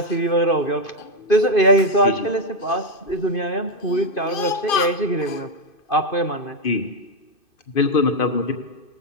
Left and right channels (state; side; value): late; right; 2.5 ms